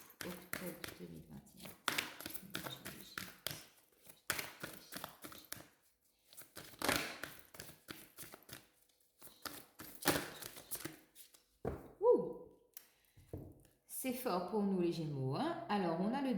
octobre 2021. Ouh, c'est fort pour nous les Gémeaux, hein. Alors, on a le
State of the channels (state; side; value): identical; both; correlation 1.00